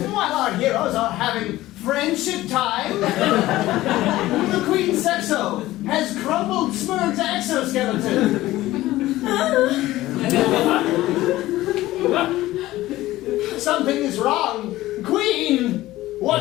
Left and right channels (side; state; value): right; quieter; 16.5 dB